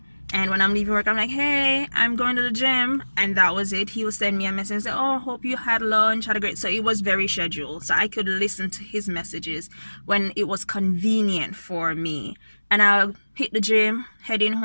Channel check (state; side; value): inverted; both; correlation -1.00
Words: And when I'm leaving work, I'm like, hey, I'm going to the gym. And that was it. He will send me a message and say, oh, hope you had lunch, had a great... So it was very scheduled. So I could listen to his messages when it was convenient for me. And I'll hit the gym, heading